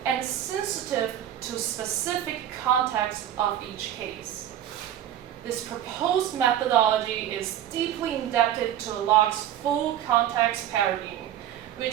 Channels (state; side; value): quieter; left; 11.4 dB